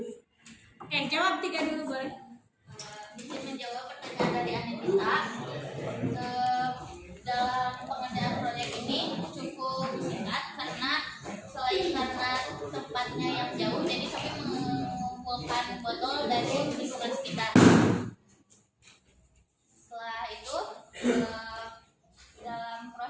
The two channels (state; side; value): identical; both; correlation 1.00